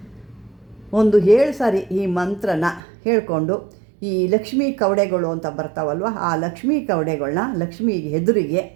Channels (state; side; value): drops out; left; at 2.8 s